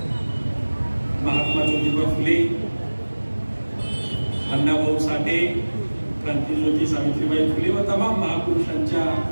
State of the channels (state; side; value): inverted; both; correlation -1.00